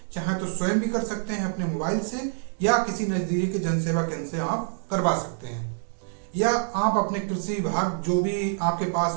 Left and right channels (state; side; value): silent; left; digital silence